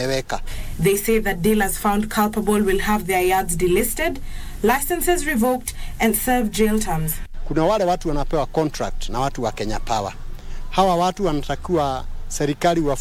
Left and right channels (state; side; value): identical; both; correlation 1.00